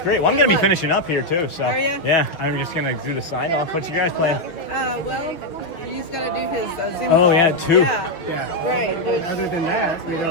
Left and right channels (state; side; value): late; right; 5.9 ms